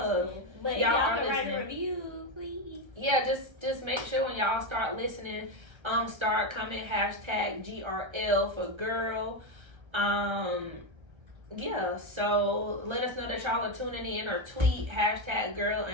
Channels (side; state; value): left; late; 1.3 ms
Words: Listening. But y'all can write a review, please. Yeah, just make sure when y'all start listening, start coming #GRL for girl. Yeah, so let us know that y'all are tuning in, or tweet #girl